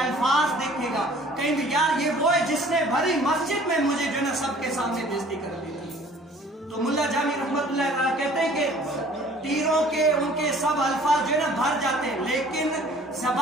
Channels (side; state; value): both; normal; correlation 0.52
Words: دیکھے گا، کہیں بھی یار یہ وہ ہے جس نے بھری مسجد میں مجھے جو ہے نا سب کے سامنے بےزتی کر دی تھی. تو ملا جامی رحمت اللہ علیہ کہتے ہیں کہ تیروں کے ان کے سب الفاظ جو ہے نا بھر جاتے ہیں، لیکن